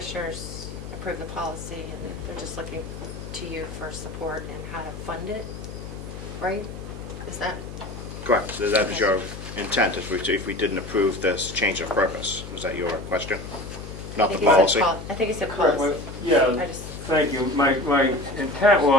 approve the policy and they're just looking to you for support and how to fund it, right? Is that? Correct. So that is your intent if we didn't approve this change of purpose. Was that your question? Not the policy? I think he said Correct. policy. Yeah, I just- thank you. My intent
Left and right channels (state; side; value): noise; left; hum, 11 dB below the sound